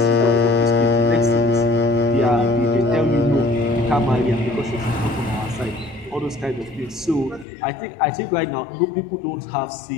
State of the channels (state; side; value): drops out; right; at 7.5 s